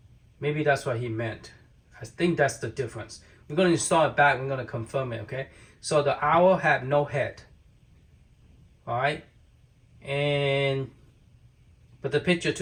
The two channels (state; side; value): identical; both; correlation 1.00